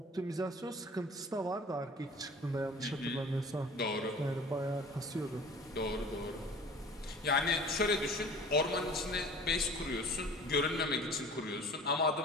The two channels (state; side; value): normal; both; correlation 0.44